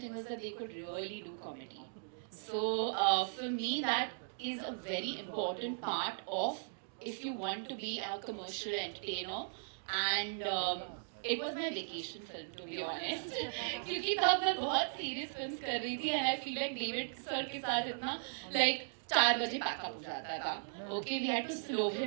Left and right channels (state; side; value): silent; left; digital silence